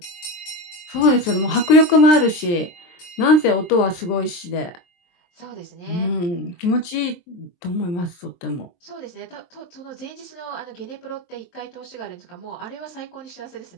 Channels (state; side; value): late; right; 23 ms